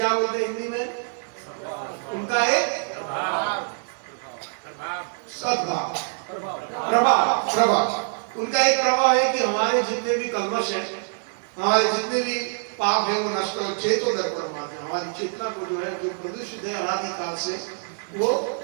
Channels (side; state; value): left; silent; digital silence